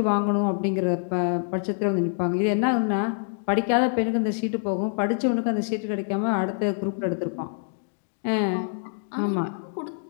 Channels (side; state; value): right; silent; digital silence